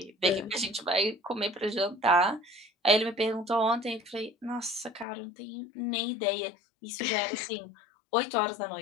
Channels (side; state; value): right; drops out; at 5.1 s